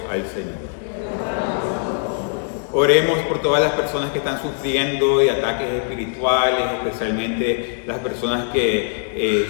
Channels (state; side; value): silent; right; 65 dB below the other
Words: al Señor. Oremos por todas las personas que están sufriendo de ataques espirituales, especialmente las personas